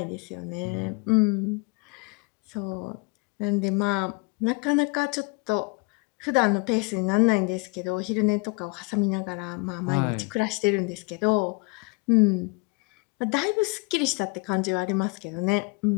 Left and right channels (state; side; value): quieter; right; 29.8 dB